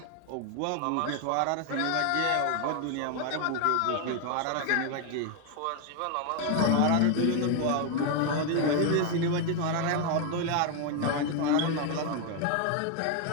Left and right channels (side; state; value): both; different; correlation 0.01